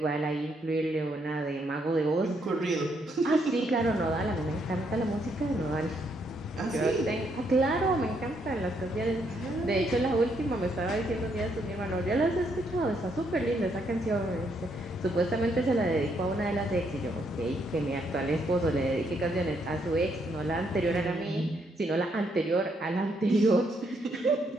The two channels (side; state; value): both; normal; correlation 0.74